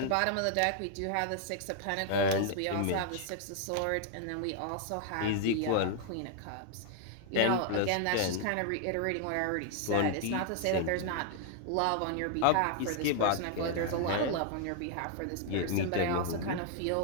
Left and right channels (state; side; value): different; both; correlation -0.01